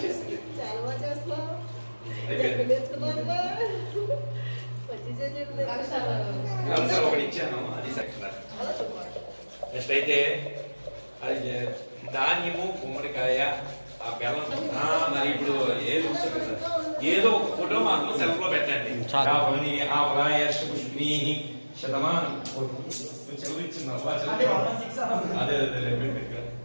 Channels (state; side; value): inverted; both; correlation -1.00